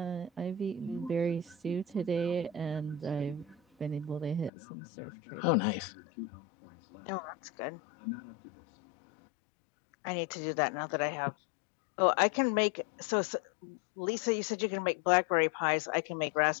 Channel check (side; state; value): right; drops out; at 4.5 s